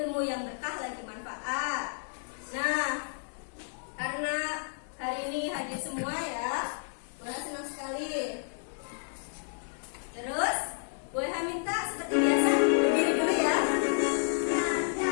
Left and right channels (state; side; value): silent; right; 57 dB below the other